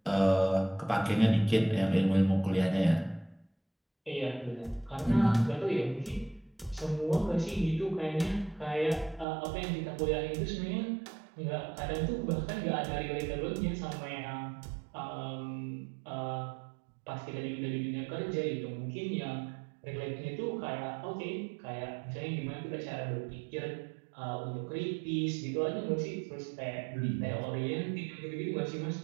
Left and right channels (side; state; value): left; drops out; at 9.2 s